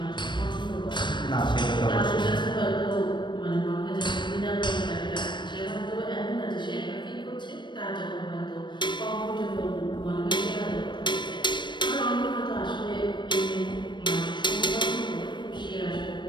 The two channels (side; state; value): right; late; 0.22 ms